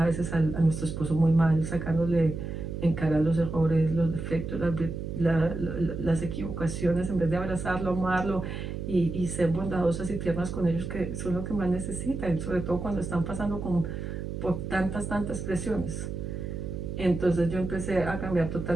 veces a nuestro esposo muy mal, sacándole en cara los errores, los defectos, las equivocaciones, en vez de abrazarlo, amarlo y ser bondadosas y tiernas con ellos, que son lo que más necesitan, sobre todo cuando están pasando por tantas presiones. Entonces yo empecé a cambiar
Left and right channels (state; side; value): noise; right; hum, 6 dB below the sound